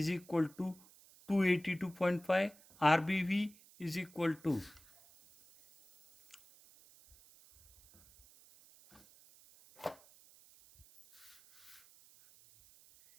equal to 282.5, RBV is equal to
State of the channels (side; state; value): right; noise; hiss, 25 dB below the sound